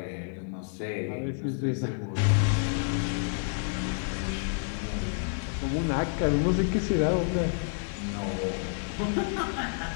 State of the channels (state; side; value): silent; right; 59 dB below the other